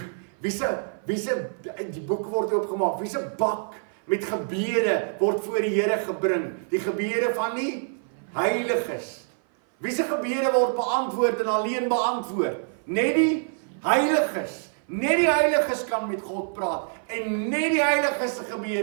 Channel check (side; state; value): left; silent; 57 dB below the other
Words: wie se die boek word oopgemaak, wie se bak met gebede word voor die Here gebring, die gebede van die heiliges. Wie se gebede word beantwoord en alleen beantwoord? Net die heiliges. Net die heiliges kan met God praat en net die heiliges se